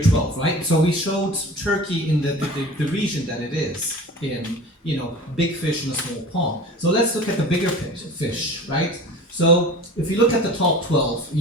12, right? So we showed Turkey in the region that it is in, you know, big fish in a small pond. So let's look at the bigger fish, right? So if you look at the top 12,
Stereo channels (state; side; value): normal; both; correlation 0.38